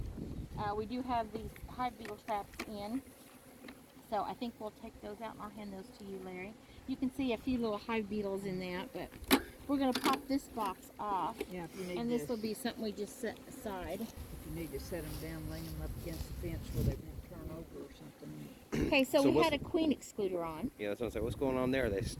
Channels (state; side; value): identical; both; correlation 1.00